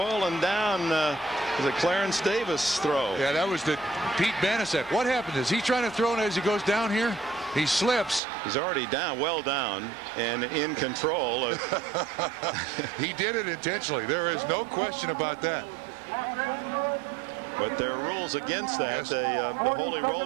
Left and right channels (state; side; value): drops out; left; at 8.2 s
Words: down. Was a Clarence Davis throw. Yeah, that was the Pete Banasek. What happened? Is he trying to throw it as he goes down here? He slips. He's already down, well down, and in control. He did it intentionally. There is no question about that. But there are rules against that. The holy